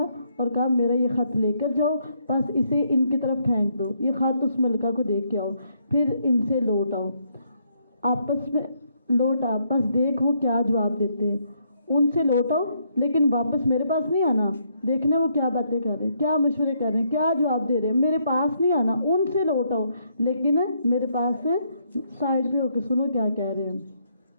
اور کہا میرا یہ خط لے کر جاؤ، بس اسے ان کی طرف پھینک دو، یہ خط اس ملکہ کو دے کے آؤ، پھر ان سے لوٹ آؤ، آپس میں لوٹ آ، بس دیکھ وہ کیا جواب دیتے ہیں۔ ان سے لوٹو لیکن واپس میرے پاس نہیں آنا، دیکھنا وہ کیا باتیں کر رہے ہیں، کیا مشورے کر رہے ہیں، کیا جواب دے رہے ہیں، میرے پاس نہیں آنا، ان سے لوٹو لیکن میرے پاس سے سائڈ پہ ہو کے سنو کیا کہہ رہے ہیں۔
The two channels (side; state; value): both; inverted; correlation -0.73